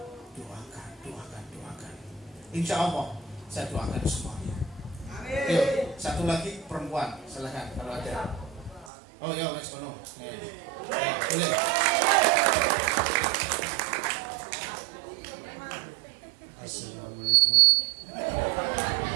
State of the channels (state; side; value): drops out; left; at 8.9 s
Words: Doakan. Insya Allah saya doakan semuanya. Yuk, satu lagi perempuan, silahkan kalau ada. Oh ya, wes kono. Boleh. Assalamualaikum.